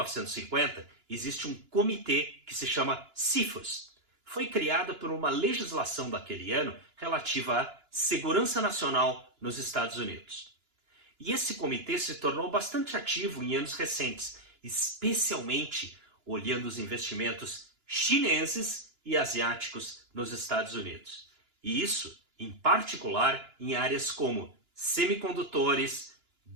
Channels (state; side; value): late; left; 2.9 ms